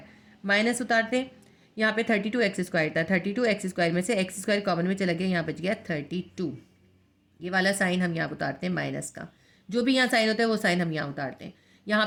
माइनस उतारते हैं, यहाँ पे 32x² था, 32x² में से x² कॉमन में चला गया, यहाँ बच गया 32, ये वाला साइन हम यहाँ उतारते हैं माइनस का, जो भी यहाँ साइन होता है वो साइन हम यहाँ उतारते हैं। यहाँ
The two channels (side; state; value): both; identical; correlation 1.00